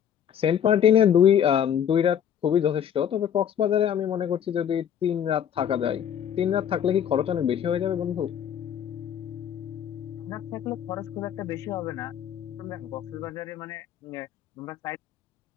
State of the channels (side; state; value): right; quieter; 9.1 dB